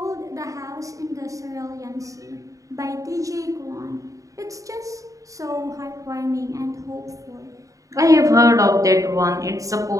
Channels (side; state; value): left; late; 0.16 ms